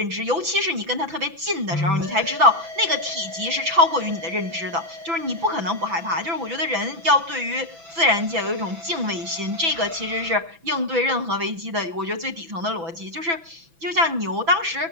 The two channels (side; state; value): left; late; 6.0 ms